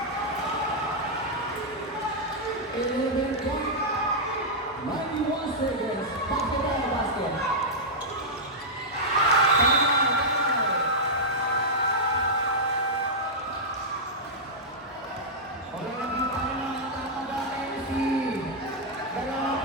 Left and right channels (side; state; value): both; normal; correlation -0.07